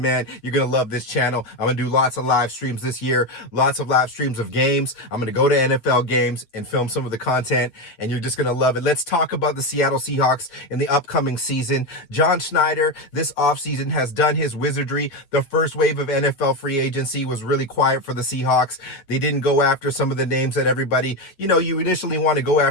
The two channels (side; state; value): right; late; 8.4 ms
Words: man. You're gonna love this channel. I'm gonna do lots of live streams this year, lots of live streams of games. I'm gonna go to NFL games and film some of the content, and you're just gonna love it. Let's talk about the Seattle Seahawks in the upcoming season. John Schneider, this offseason, has done his wizardry. The first wave of NFL free agency was really quiet for the Seahawks. They didn't go after some of the names that everybody, you initially want to go